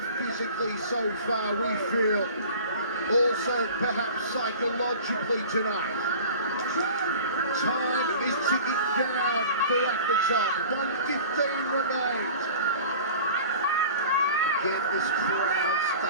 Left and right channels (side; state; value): both; inverted; correlation -0.41